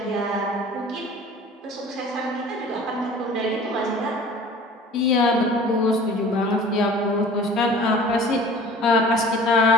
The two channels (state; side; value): normal; both; correlation 0.44